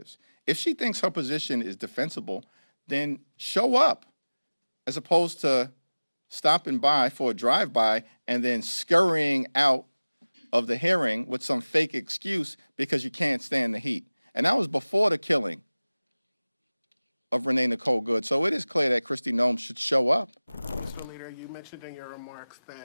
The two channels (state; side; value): inverted; both; correlation -1.00